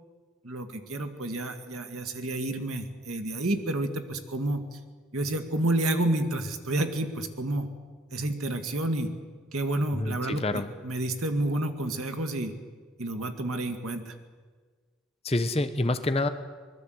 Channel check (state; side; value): normal; both; correlation 0.63